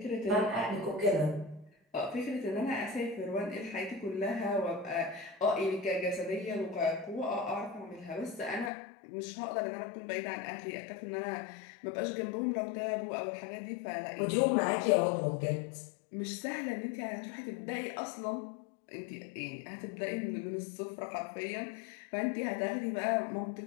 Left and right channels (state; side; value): drops out; right; at 8.7 s